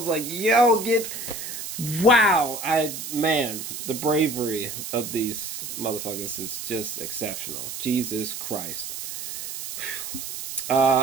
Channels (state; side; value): noise; right; hiss, 7 dB below the sound